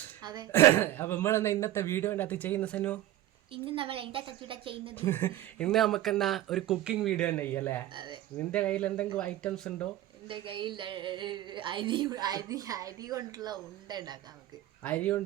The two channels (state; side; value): quieter; left; 14.1 dB